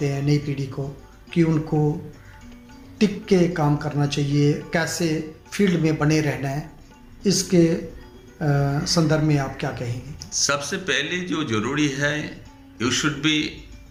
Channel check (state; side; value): identical; both; correlation 1.00